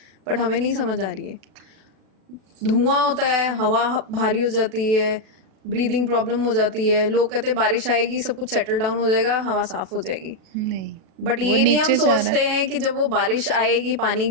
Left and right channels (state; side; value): late; left; 37 ms